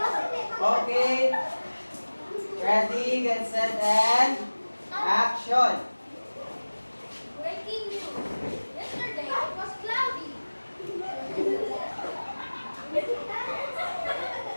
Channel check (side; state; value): both; inverted; correlation -1.00